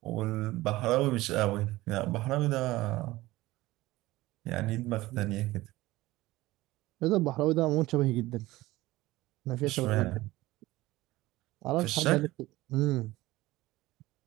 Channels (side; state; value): left; quieter; 18.3 dB